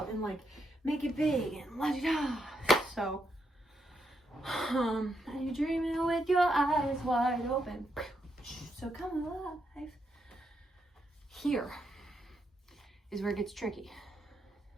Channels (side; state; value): both; normal; correlation 0.79